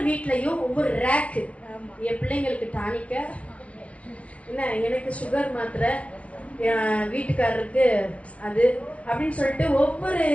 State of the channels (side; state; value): right; late; 0.063 ms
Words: வீட்லயும் ஒவ்வொரு ரேக்கு, என் பிள்ளைங்களுக்கு டானிக்க, என்ன எனக்கு சுகர் மாத்திரை, வீட்டுக்காரருக்கு அது அப்படின்னு சொல்லிட்டு ஒவ்வொரு